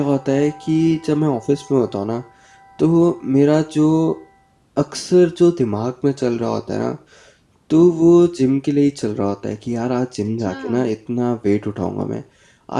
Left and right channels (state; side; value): identical; both; correlation 1.00